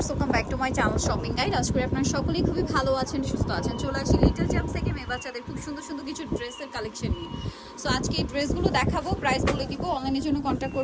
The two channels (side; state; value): both; identical; correlation 1.00